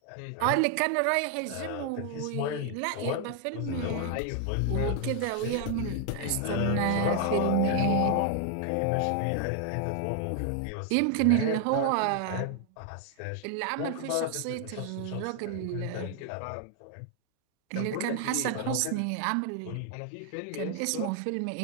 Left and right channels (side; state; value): both; different; correlation 0.00